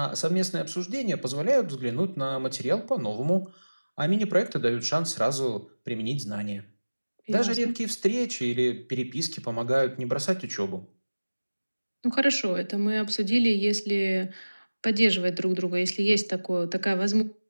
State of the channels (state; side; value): inverted; both; correlation -1.00